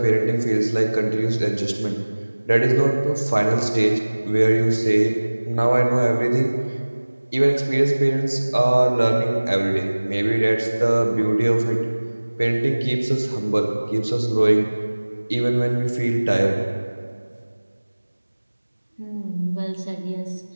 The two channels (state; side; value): inverted; both; correlation -1.00